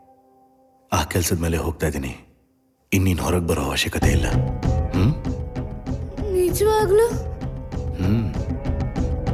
ಆ ಕೆಲಸದ ಮೇಲೆ ಹೋಗ್ತಾ ಇದ್ದೀನಿ. ಇನ್ನೀನು ಹೊರಗೆ ಬರೋ ಅವಶ್ಯಕತೆ ಇಲ್ಲ. ನಿಜವಾಗ್ಲೂ?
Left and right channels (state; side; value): identical; both; correlation 1.00